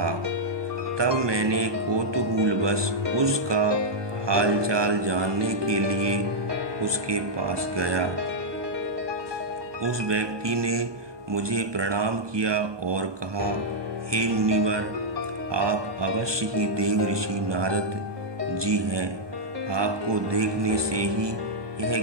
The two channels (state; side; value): late; left; 1.2 ms